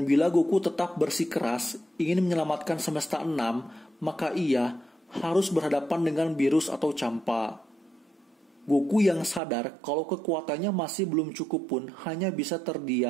bila Goku tetap bersikeras ingin menyelamatkan semesta 6, maka ia harus berhadapan dengan Beerus atau Champa. Goku yang sadar kalau kekuatannya masih belum cukup pun hanya bisa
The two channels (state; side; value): drops out; left; at 9.4 s